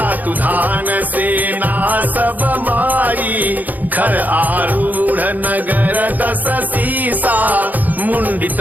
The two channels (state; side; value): late; left; 0.082 ms